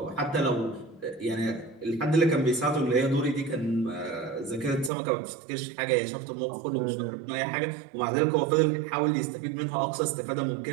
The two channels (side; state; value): left; drops out; at 4.9 s